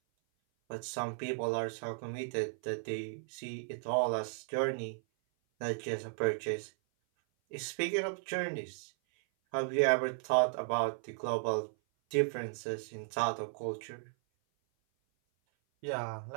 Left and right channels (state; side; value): silent; left; 54 dB below the other